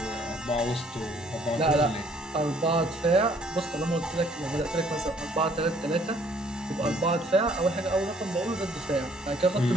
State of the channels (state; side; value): normal; both; correlation 0.61